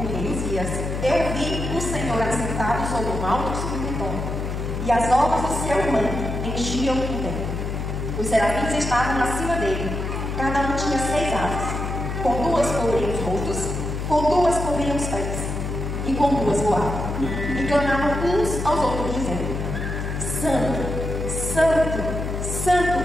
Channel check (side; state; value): left; noise; hum, 3 dB below the sound